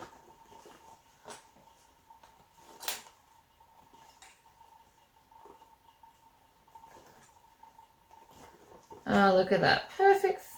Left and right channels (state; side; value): identical; both; correlation 1.00